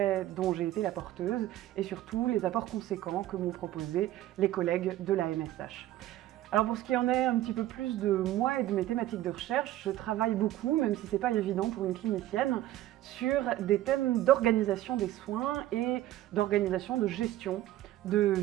dont j'ai été la porteuse et surtout les apports conséquents que m'ont proposés les collègues de la MSH. Alors pour ce qui en est un petit peu plus de moi et de mes thématiques de recherche, je travaille beaucoup, même si ce n'est pas évident pour une clinicienne, sur des thèmes d'organisation des soins et d'organisation de gestion de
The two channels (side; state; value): left; quieter; 14.2 dB